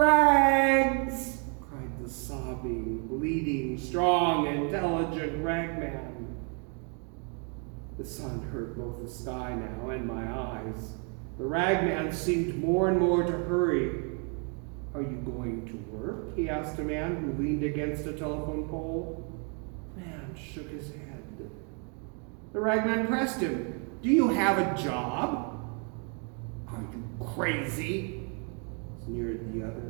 Cried the sobbing, bleeding, strong, intelligent Ragman. The sun hurt both the sky now and my eyes. The Ragman seemed more and more to hurry. Are you going to work? He asked a man who leaned against a telephone pole. The man shook his head. The Ragman pressed him. Do you have a job? Are you crazy? Sneered the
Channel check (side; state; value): left; quieter; 38.3 dB